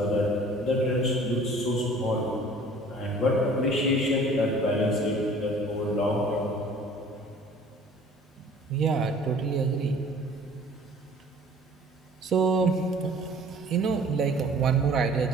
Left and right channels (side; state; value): both; normal; correlation 0.50